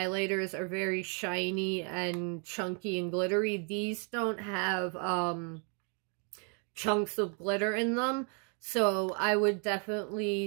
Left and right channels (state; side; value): quieter; left; 38.6 dB